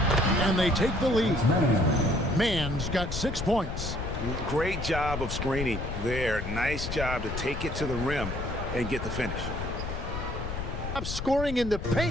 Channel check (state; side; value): noise; left; rumble, 5 dB below the sound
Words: And they take the lead. Man's got 6 points. Great job of screening there. Nice job to take it to the rim and get the finish. Scoring in the